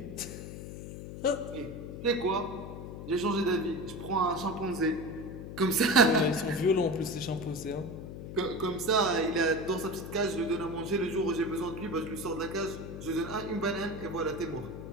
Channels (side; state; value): left; noise; hum, 9 dB below the sound